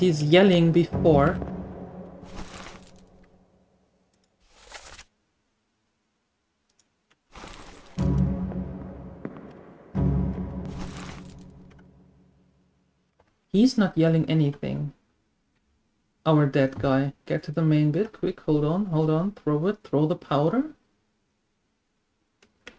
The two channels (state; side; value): identical; both; correlation 1.00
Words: yelling before, he's not yelling anything. Our dead guy. Get to the main bit, quick, hold on, throw it, throw the powder.